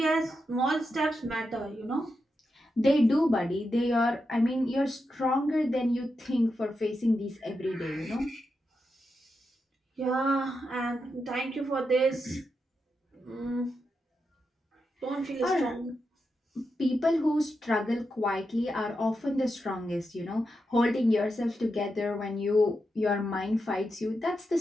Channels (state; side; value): normal; both; correlation 0.87